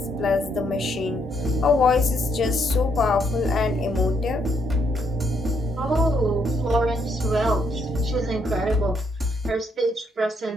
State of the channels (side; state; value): both; normal; correlation 0.74